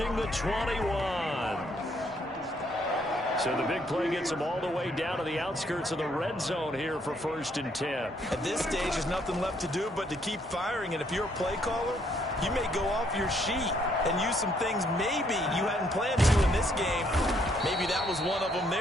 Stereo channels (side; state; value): both; normal; correlation 0.69